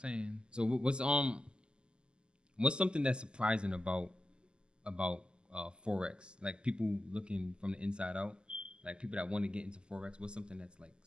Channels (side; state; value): left; late; 0.049 ms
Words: So what's something that's surprising about Forex? Like people looking from the inside out, like people that want to get into Forex. What's something that's like